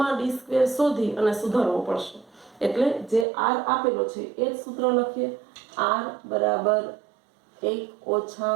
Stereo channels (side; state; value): left; drops out; at 3.2 s